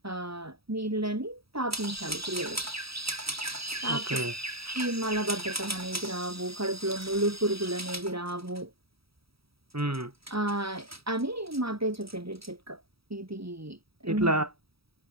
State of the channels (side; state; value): left; late; 0.76 ms